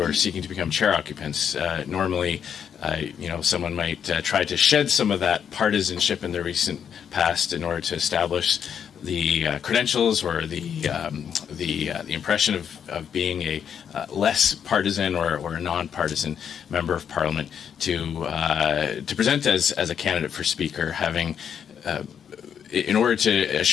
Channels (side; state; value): right; quieter; 8.0 dB